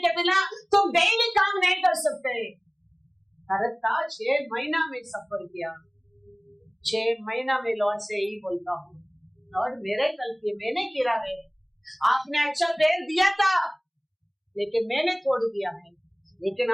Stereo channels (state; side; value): identical; both; correlation 1.00